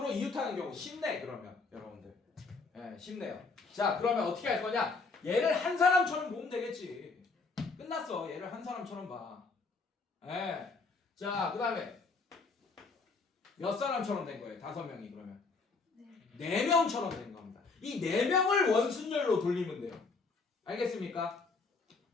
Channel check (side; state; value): right; quieter; 4.2 dB